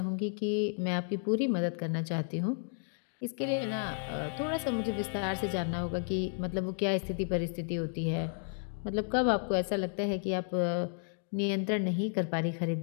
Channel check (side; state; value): right; silent; 56 dB below the other